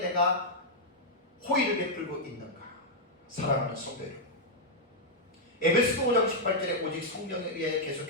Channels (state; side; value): normal; both; correlation -0.04